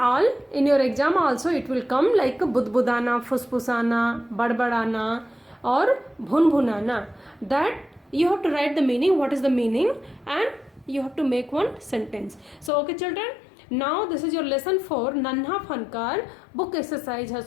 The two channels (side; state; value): right; drops out; at 12.7 s